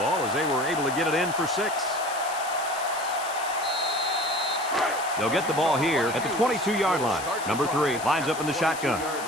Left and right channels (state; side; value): noise; left; hiss, 11 dB below the sound